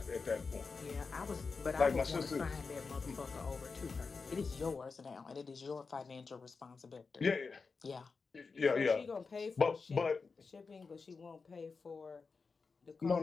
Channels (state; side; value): quieter; right; 4.7 dB